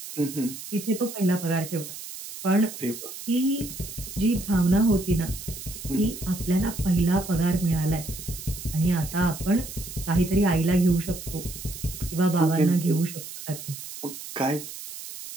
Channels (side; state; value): right; noise; hiss, 11 dB below the sound